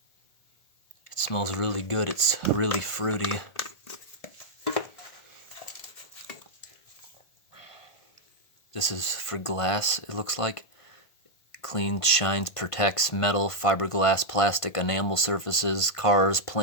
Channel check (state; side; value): late; right; 1.5 ms